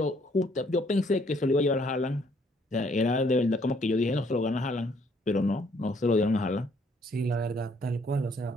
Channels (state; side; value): normal; both; correlation 0.66